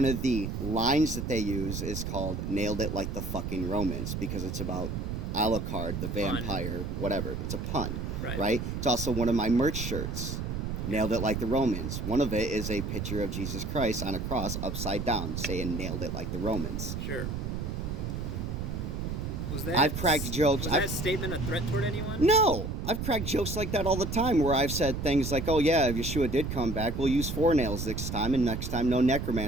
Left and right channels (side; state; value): right; noise; rumble, 4 dB below the sound